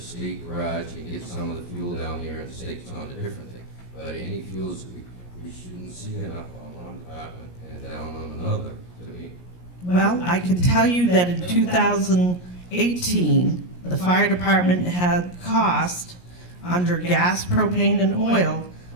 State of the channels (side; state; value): right; late; 17 ms